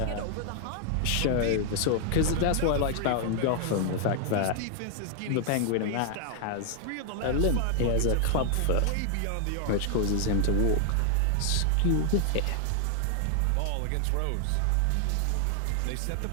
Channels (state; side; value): different; both; correlation 0.00